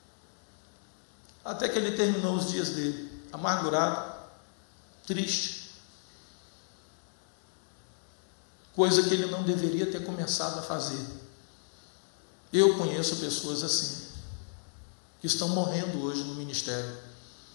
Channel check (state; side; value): silent; right; digital silence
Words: Até que ele terminou os dias dele, amargurado, triste. Coisa que ele não deveria ter começado a fazer. Eu conheço pessoas assim, que estão morrendo hoje no ministério.